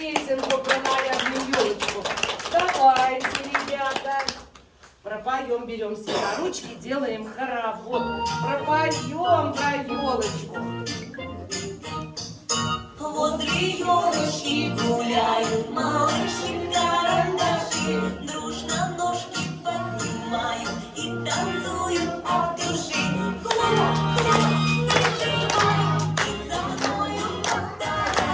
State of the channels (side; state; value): both; identical; correlation 1.00